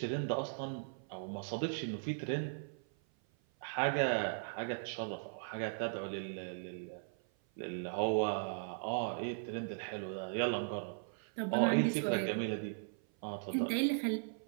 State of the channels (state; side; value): silent; left; 52 dB below the other